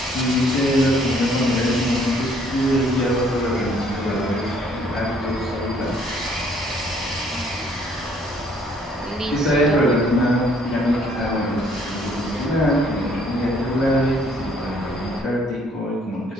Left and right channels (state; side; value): normal; both; correlation 0.63